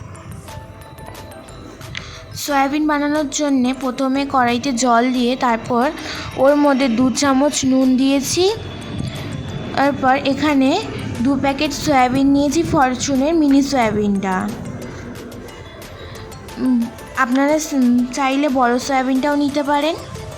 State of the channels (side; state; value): both; identical; correlation 1.00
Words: সয়াবিন বানানোর জন্যে প্রথমে কড়াইতে জল দিয়ে তারপর ওর মধ্যে 2 চামচ নুন দিয়েছি। তারপর এখানে 2 প্যাকেট সয়াবিন নিয়েছি, ফরচুনের মিনি সয়াবিনটা। আপনারা চাইলে বড় সয়াবিনটাও নিতে পারেন।